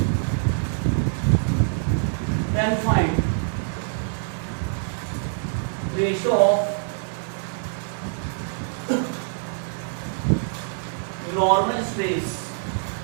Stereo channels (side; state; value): left; silent; 62 dB below the other